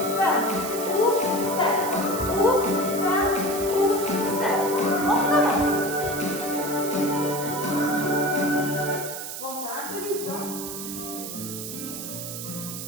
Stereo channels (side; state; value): right; noise; hiss, 8 dB below the sound